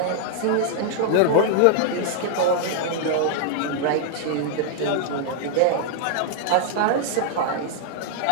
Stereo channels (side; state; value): both; different; correlation 0.00